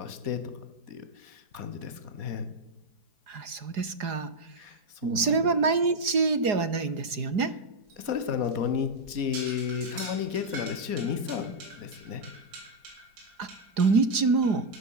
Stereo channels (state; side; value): late; left; 4.9 ms